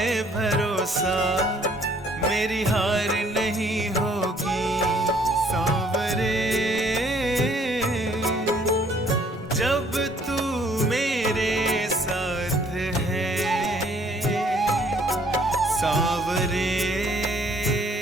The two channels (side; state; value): both; normal; correlation 0.61